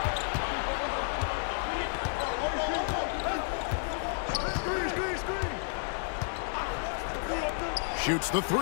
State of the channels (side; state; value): right; silent; 57 dB below the other